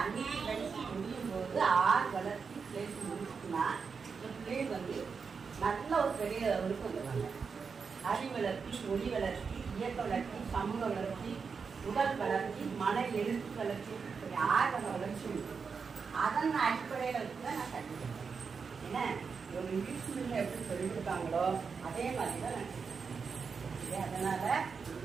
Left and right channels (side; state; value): left; quieter; 5.5 dB